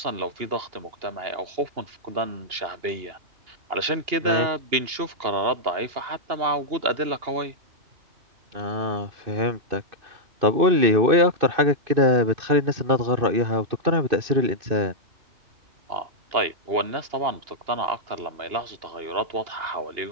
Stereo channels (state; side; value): late; left; 2.8 ms